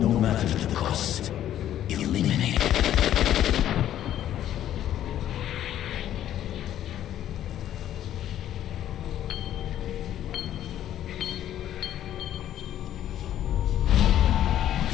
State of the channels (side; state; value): right; quieter; 11.6 dB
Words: matter the cost. Eliminated.